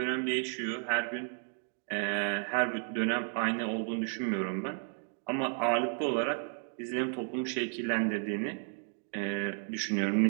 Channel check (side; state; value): left; silent; 56 dB below the other